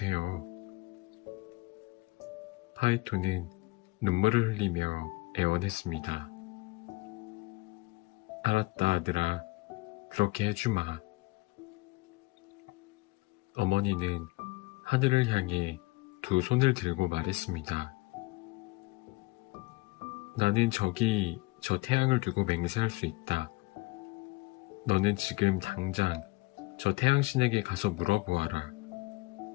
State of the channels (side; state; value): right; quieter; 22.4 dB